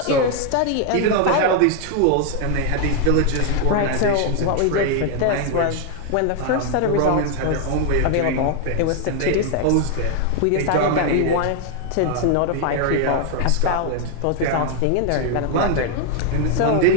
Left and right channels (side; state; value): both; different; correlation 0.00